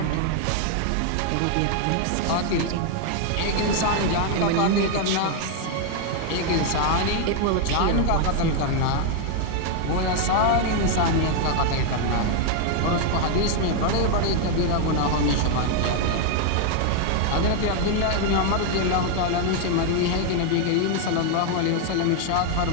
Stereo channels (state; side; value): different; both; correlation 0.00